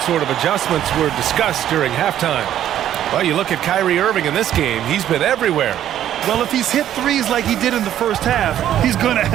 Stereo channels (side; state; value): left; quieter; 11.4 dB